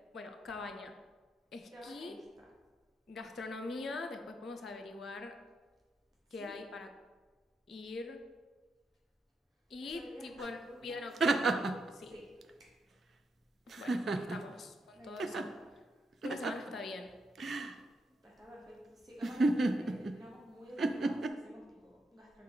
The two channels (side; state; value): both; normal; correlation 0.82